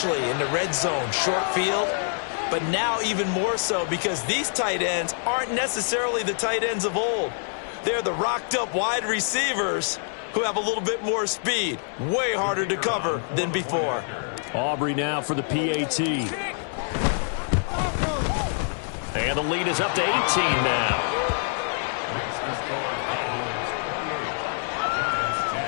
in the red zone, short field. But now even more so because these tight ends aren't necessarily the tight ends of old. They're the rocked-up wide receivers who have a little bit more speed. Way harder to cover than before. Aubrey now for the PAT. And the lead is up to 18 now.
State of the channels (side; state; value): right; silent; 61 dB below the other